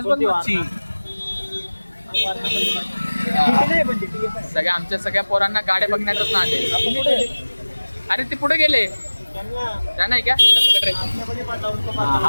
सगळ्या आमच्या सगळ्या पोरांना गाड्या बघण्यातच ना. अरे ते पुढे गेले. त्या नाही का?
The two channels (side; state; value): both; inverted; correlation -1.00